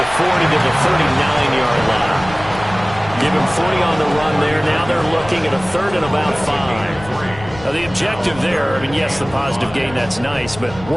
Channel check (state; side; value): noise; left; rumble, 16 dB below the sound